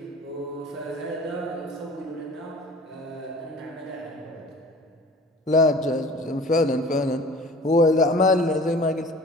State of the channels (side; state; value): both; normal; correlation 0.44